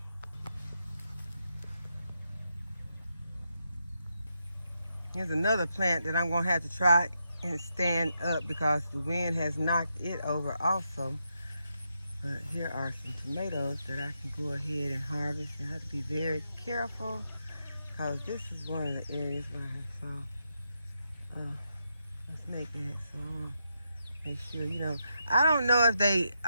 Here's another plant that I'm gonna have to try and stand up because the wind has knocked it over also. But here are some tomatoes that I can go ahead and harvest, and I have to be very careful because this is one of the areas where I saw a snake at, so I want to make sure, I don't know if they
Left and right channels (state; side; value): inverted; both; correlation -0.83